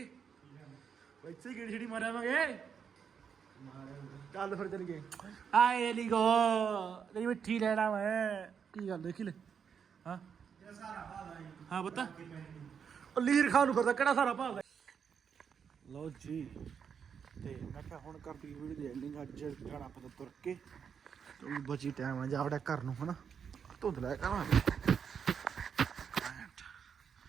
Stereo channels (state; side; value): quieter; left; 7.1 dB